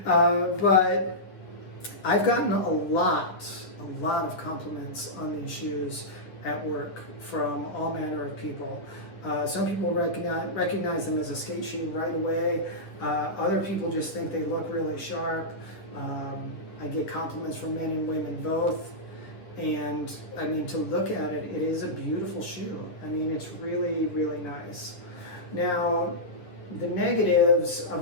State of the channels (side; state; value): right; late; 9.9 ms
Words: But I've gotten a lot of compliments on these shoes at work from all manner of people. Some people recognize them as a skate shoe right away. Other people just think they look really sharp. I get compliments from men and women both. And I mean, to look at it, it is a beautiful shoe. I mean, it's really, really nice. Now, the negatives of